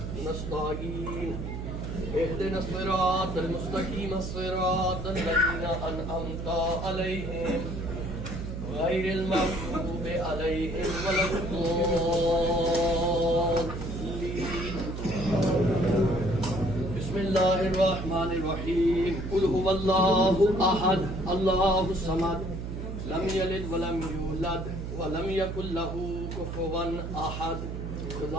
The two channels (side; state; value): right; noise; hum, 6 dB below the sound